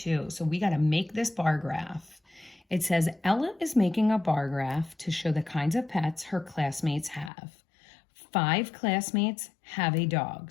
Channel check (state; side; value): drops out; right; at 7.3 s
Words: So we got to make this bar graph. It says, Ella is making a bar graph to show the kinds of pets her classmates have. 5 classmates have a dog.